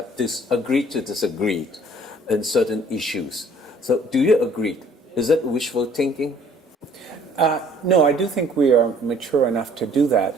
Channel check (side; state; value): both; normal; correlation 0.56